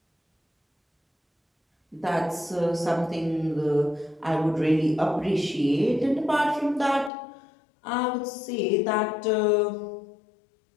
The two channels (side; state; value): right; drops out; at 7.1 s